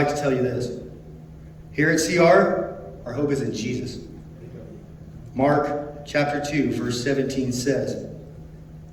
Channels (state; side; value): identical; both; correlation 1.00